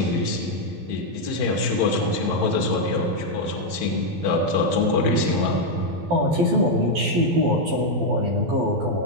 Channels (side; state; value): left; late; 12 ms